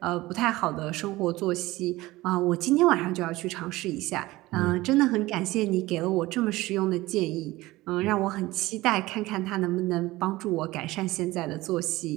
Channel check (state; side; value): quieter; left; 18.8 dB